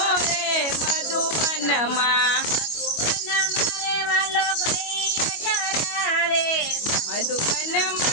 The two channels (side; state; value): right; late; 25 ms